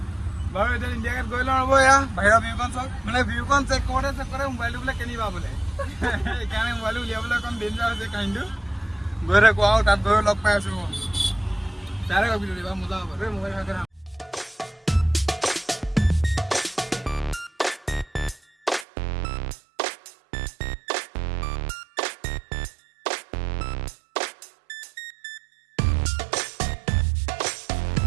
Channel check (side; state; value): left; drops out; at 18.9 s